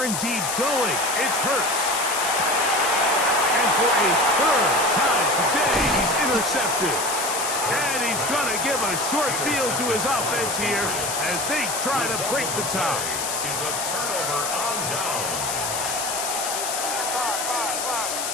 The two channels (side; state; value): left; noise; hiss, 3 dB below the sound